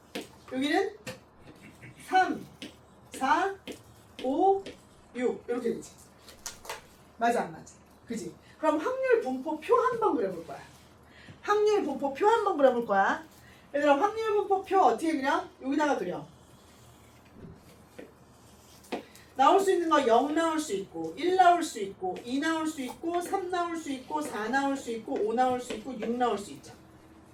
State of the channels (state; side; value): identical; both; correlation 1.00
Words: 여기는 3, 4, 5, 6 이렇게 되지. 맞아 안 맞아? 그지? 그럼 확률 분포 표 한번 그려볼 거야. 확률 분포 표 한번 그려볼 거야. 얘들아 확률 분포 표 어떻게 그려? 여기다가 그려. 나올 수 있는 거 0 나올 수 있고 1 나올 수 있고 2 나올 수 있고 3 나올 수 있고 4 나올 수 있고 5 나올 수 있고 6 나올 수 있죠.